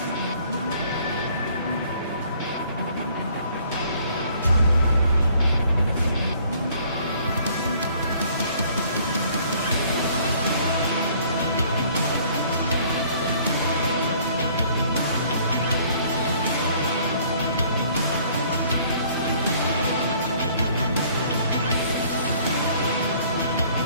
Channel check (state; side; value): inverted; both; correlation -0.59